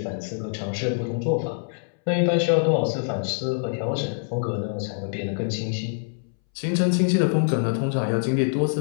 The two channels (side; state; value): right; silent; 62 dB below the other